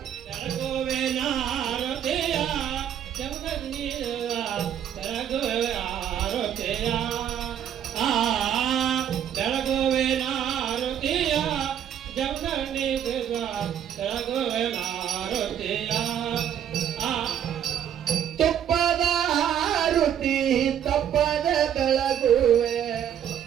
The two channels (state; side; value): quieter; left; 9.6 dB